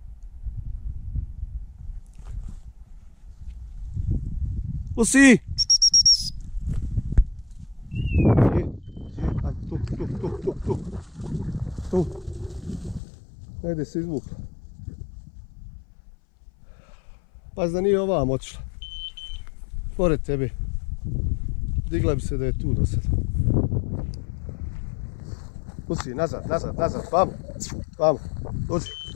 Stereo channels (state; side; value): drops out; right; at 13.0 s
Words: Tu si! Tu. Negdje se izvukla. Pazi da nije ovam otišla. Pored tebe. Digla bi se da je tu do sada. Tu si, nazad, vamo. Vamo,